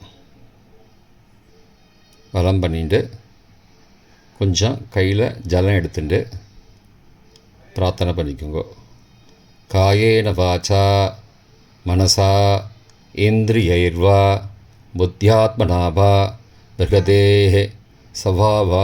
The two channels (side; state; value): both; identical; correlation 1.00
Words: வலம் பண்ணிட்டு கொஞ்சம் கையில் ஜலம் எடுத்துட்டு பிரார்த்தனை பண்ணிக்கோங்க. காயேன வாச்சா மனசா இந்திரியைர்வா புத்தியாத்மனாவா பிரகதேஹ